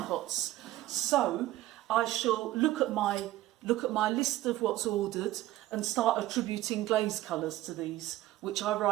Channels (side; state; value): left; quieter; 15.5 dB